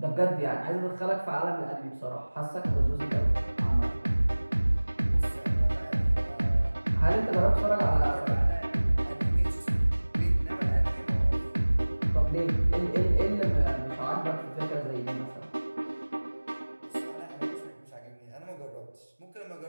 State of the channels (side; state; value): both; inverted; correlation -1.00